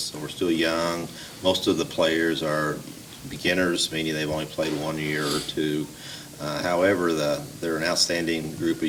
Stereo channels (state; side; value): identical; both; correlation 1.00